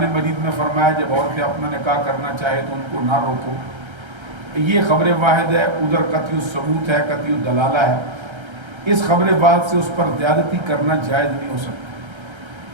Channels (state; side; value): late; left; 1.3 ms